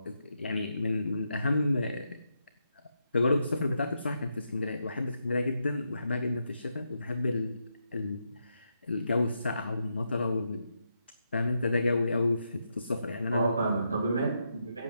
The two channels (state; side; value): inverted; both; correlation -0.83